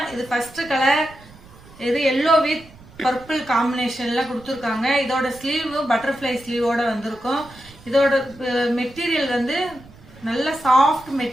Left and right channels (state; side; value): noise; right; rumble, 22 dB below the sound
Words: இது ஃபர்ஸ்ட் கலர், இது எல்லோ வித் பர்பிள் காம்பினேஷன்ல கொடுத்துருக்காங்க. இதோட ஸ்லீவ் பட்டர்ஃப்ளை ஸ்லீவோட வந்திருக்கும். இதோட மெட்டீரியல் வந்து நல்ல சாஃப்ட்